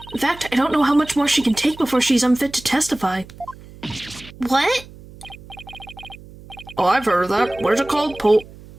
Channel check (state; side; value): noise; right; hum, 19 dB below the sound